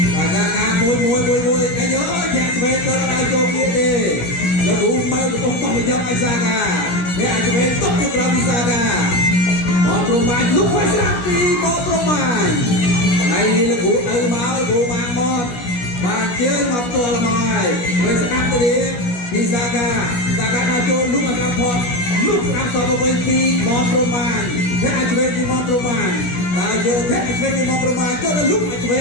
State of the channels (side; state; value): right; late; 17 ms